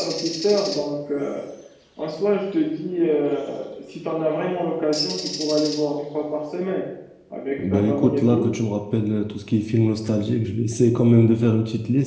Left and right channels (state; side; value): identical; both; correlation 1.00